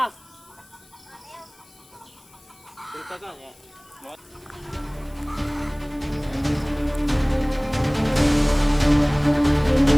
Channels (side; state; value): left; noise; hiss, 27 dB below the sound